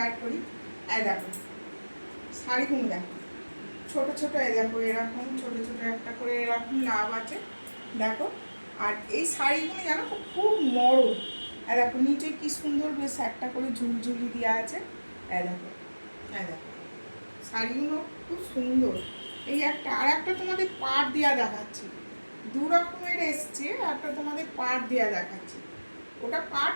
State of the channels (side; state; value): both; inverted; correlation -1.00